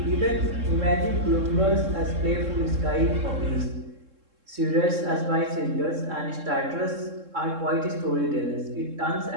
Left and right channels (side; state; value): left; late; 3.7 ms